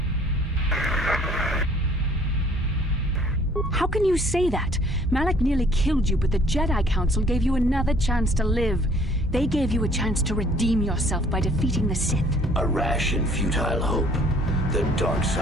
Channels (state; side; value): normal; both; correlation 0.57